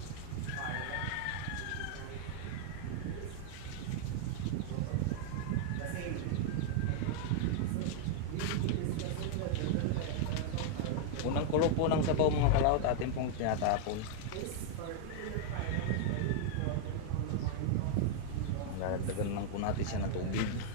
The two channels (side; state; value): both; different; correlation 0.00